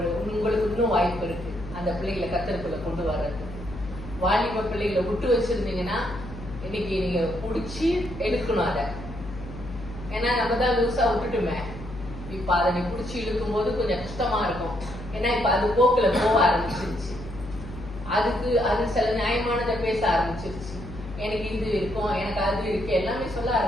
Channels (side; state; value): left; noise; hum, 12 dB below the sound